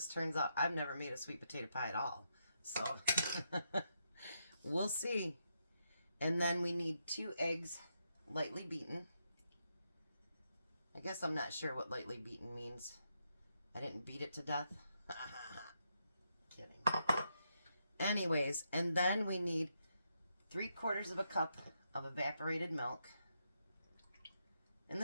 turns out. I've never made a sweet potato pie at all, so we'll see. And then we need 2 eggs, lightly beaten. I guess I'm not sure what lightly beaten means. I didn't beat it to death. Kidding. Anyways, and then we need 3/4 of a cup of evaporated milk. And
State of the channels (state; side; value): inverted; both; correlation -0.81